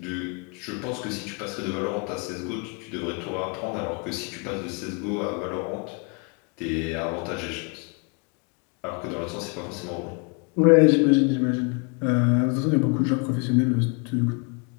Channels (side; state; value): right; quieter; 34.3 dB